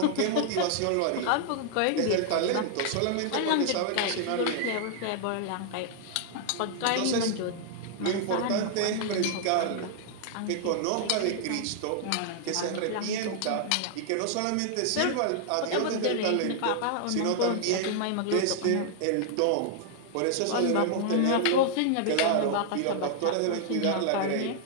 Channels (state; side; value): different; both; correlation -0.01